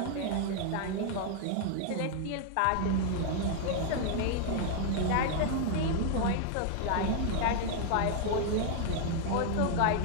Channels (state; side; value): different; both; correlation 0.00